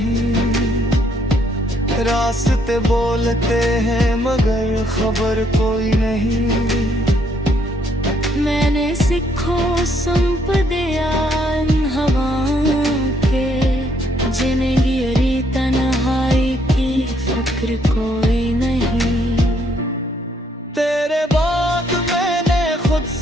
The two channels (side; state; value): both; normal; correlation 0.70